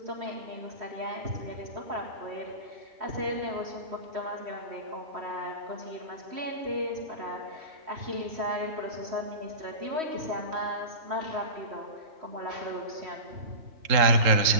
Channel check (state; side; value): late; left; 3.7 ms